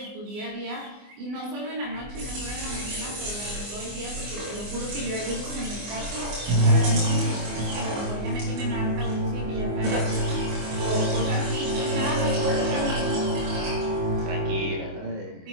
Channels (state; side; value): late; left; 24 ms